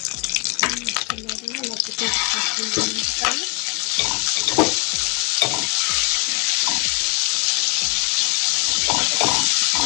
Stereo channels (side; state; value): right; quieter; 26.6 dB